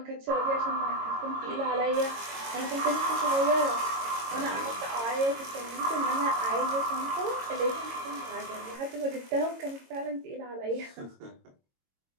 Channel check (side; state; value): left; late; 22 ms